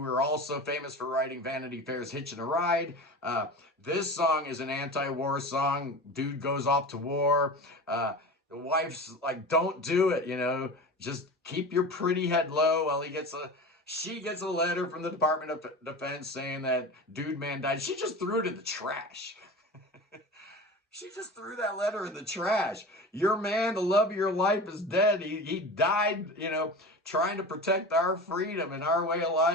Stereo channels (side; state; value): both; normal; correlation 0.32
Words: also famous for writing Vanity Fair's Hitchin' a Ride. This song is an anti-war song. Dude goes off to war. The wife's like, don't do it, just keep your pretty head low while she gets a letter from the Department of Defense saying that dude man died. She just threw it in the trash. She just threw that letter in the trash. Your man, the love of your life, is dead. He died, trying to protect our freedom and our way of